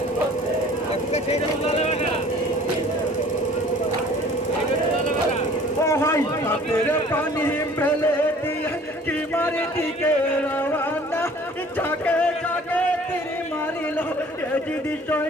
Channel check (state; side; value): normal; both; correlation 0.51